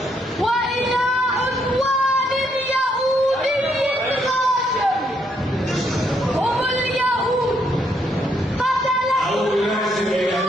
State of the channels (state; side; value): normal; both; correlation 0.74